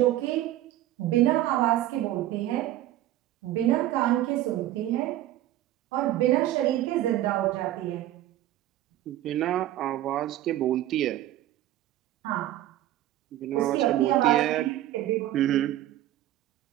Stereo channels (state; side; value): quieter; left; 14.1 dB